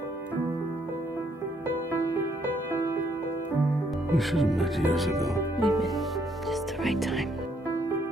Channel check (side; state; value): both; normal; correlation 0.70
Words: We should have met years ago. We met just the right time.